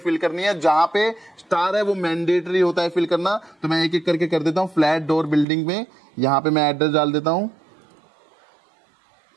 करनी है। जहां पे स्टार है वो मैंडेटरी होता है फिल करना, तो मैं एक एक करके कर देता हूँ। फ्लैट डोर बिल्डिंग में यहाँ पे मैं एड्रेस डाल देता हूँ,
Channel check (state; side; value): drops out; left; at 5.5 s